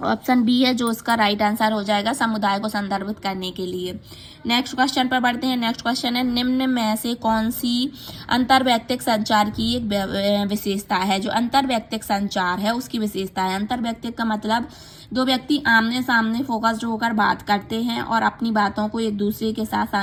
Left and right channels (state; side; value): identical; both; correlation 1.00